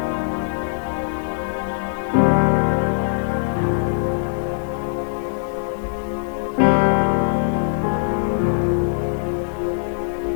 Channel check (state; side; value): silent; right; 56 dB below the other